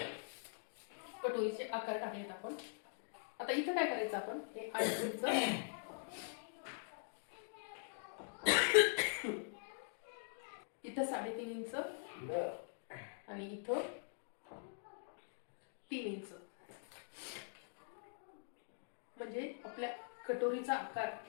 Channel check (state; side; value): silent; right; digital silence